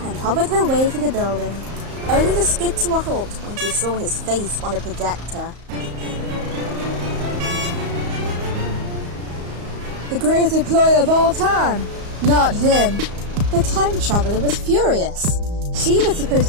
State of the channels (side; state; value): left; late; 34 ms